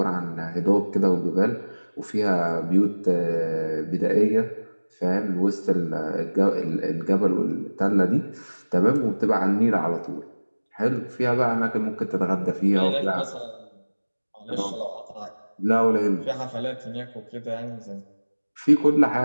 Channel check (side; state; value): both; inverted; correlation -1.00